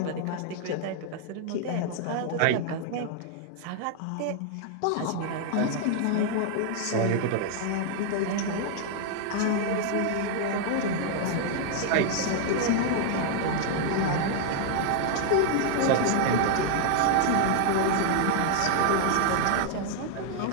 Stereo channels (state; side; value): different; both; correlation 0.00